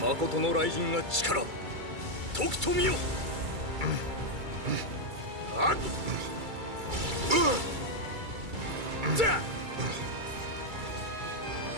Makoto no Raijin ga chikara toku to miyo.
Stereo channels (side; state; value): left; late; 2.3 ms